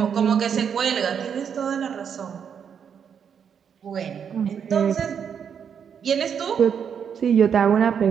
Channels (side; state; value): left; quieter; 7.5 dB